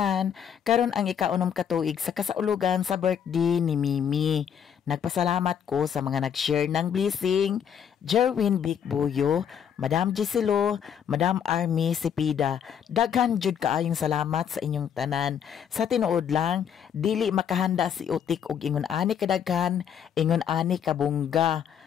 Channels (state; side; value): quieter; right; 8.3 dB